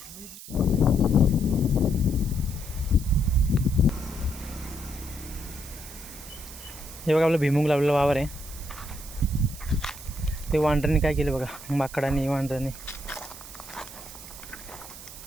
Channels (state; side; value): noise; right; hiss, 14 dB below the sound